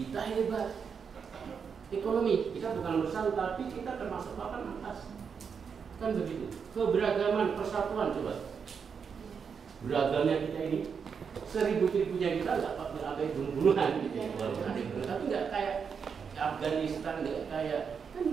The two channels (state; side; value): quieter; left; 6.4 dB